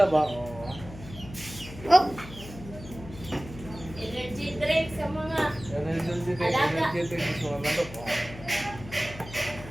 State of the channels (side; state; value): left; noise; hum, 14 dB below the sound